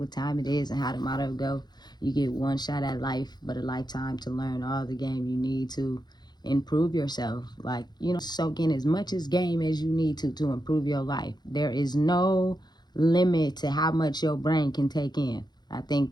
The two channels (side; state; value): right; late; 0.20 ms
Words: time it is and how the motto go. You get one shot at life, but a lifetime to learn all the game you need to improve yourself. Like, soak in as much as game as you need to improve your life. There is no limit to how much your brain can take in. I